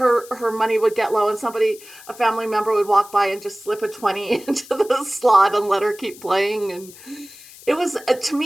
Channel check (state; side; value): noise; left; hiss, 20 dB below the sound